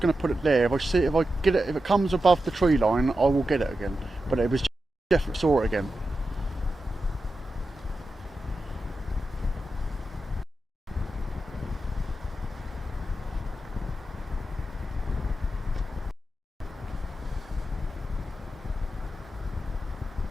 going to put it there. If I get it, if it comes above the tree line, I will get it again. But it was definitely saw it again.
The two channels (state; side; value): normal; both; correlation 0.90